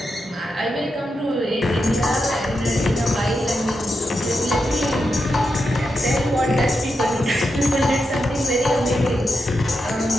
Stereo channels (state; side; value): normal; both; correlation 0.86